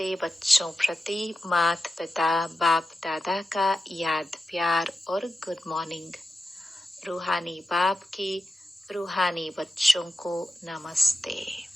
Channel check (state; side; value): normal; both; correlation 0.91